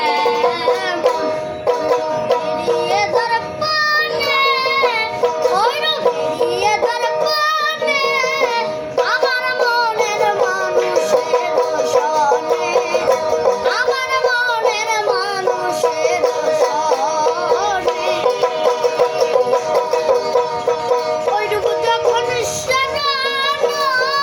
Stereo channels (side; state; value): both; identical; correlation 1.00